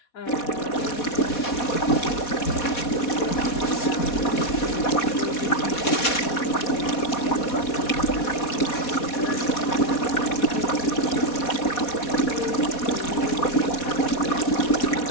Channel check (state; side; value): late; right; 4.2 ms